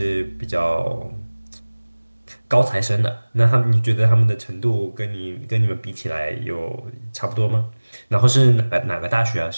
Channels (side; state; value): both; inverted; correlation -1.00